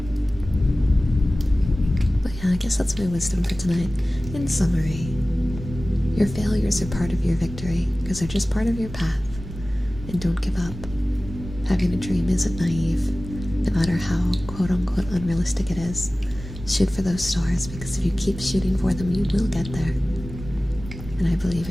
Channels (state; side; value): normal; both; correlation 0.97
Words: But yeah, I guess that's my wisdom for tonight. In summary, your failures are part of your victory, because they're just part of your path. And don't give up. Having a dream isn't naive, no matter how quote-unquote unrealistic it is. Shoot for those stars, because if you keep shooting for them, you will get there. And I believe